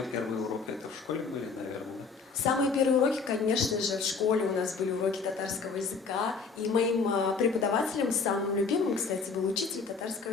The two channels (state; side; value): quieter; right; 4.9 dB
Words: первый урок это в школе были, наверное? Самые первые уроки, конечно же, в школе у нас были уроки татарского языка. И моим преподавателем, самым любимым, кстати, был учитель